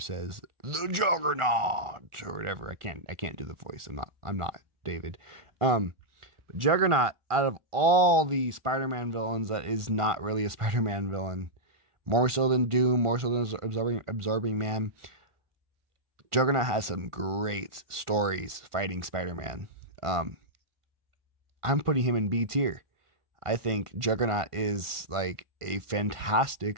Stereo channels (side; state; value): left; late; 1.4 ms